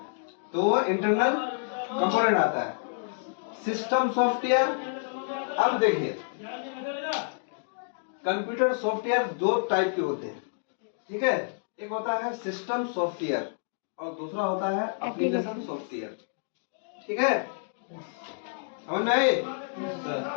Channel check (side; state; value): right; silent; digital silence